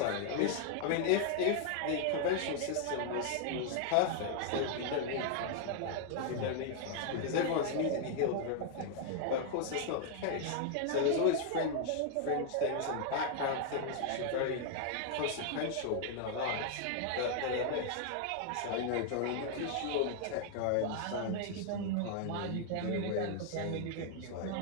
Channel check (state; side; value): different; both; correlation 0.00